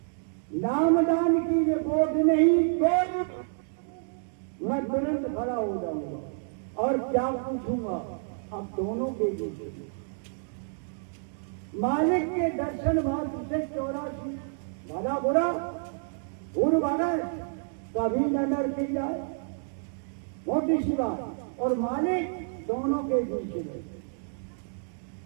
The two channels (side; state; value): left; silent; digital silence